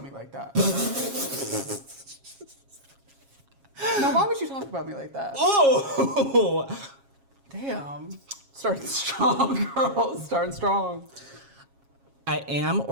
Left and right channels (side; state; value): left; late; 7.3 ms